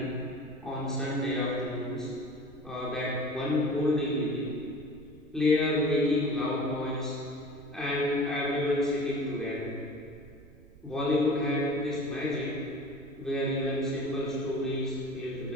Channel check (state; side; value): noise; right; rumble, 22 dB below the sound